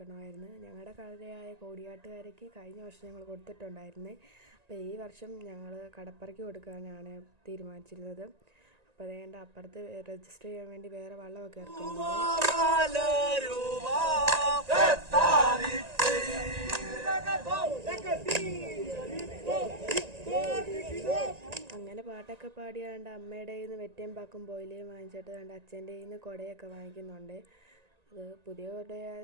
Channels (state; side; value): late; left; 1.9 ms